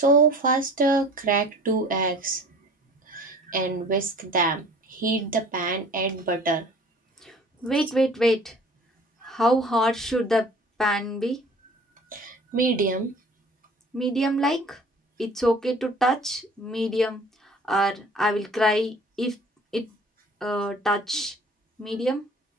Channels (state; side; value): normal; both; correlation 0.47